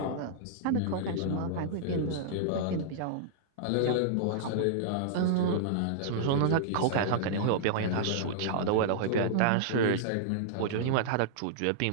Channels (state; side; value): different; both; correlation -0.02